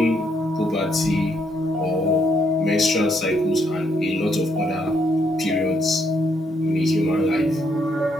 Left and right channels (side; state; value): both; normal; correlation 0.73